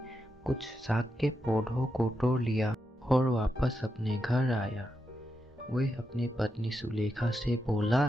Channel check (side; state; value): both; normal; correlation 0.85